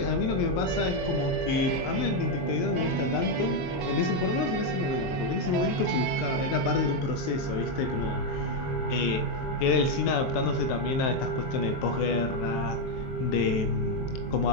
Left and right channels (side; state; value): right; late; 23 ms